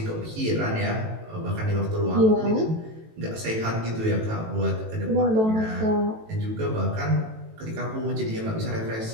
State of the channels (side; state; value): left; late; 18 ms